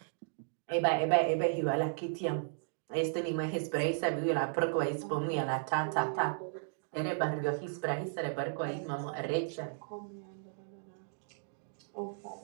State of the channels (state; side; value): silent; left; digital silence